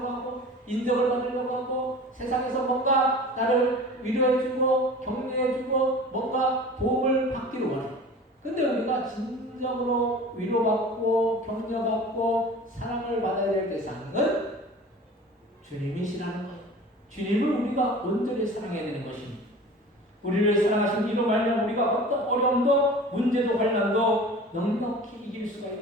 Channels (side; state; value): both; normal; correlation 0.40